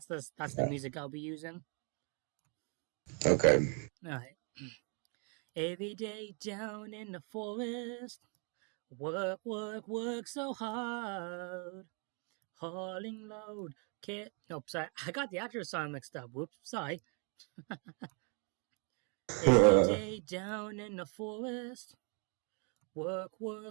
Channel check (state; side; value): quieter; left; 37.4 dB